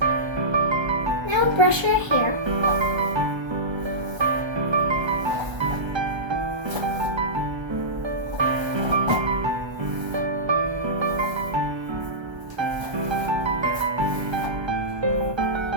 Now brush your hair.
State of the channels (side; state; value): left; late; 1.3 ms